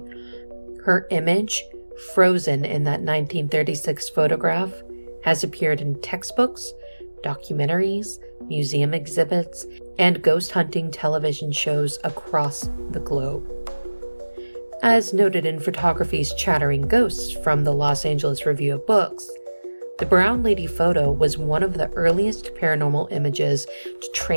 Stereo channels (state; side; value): inverted; both; correlation -1.00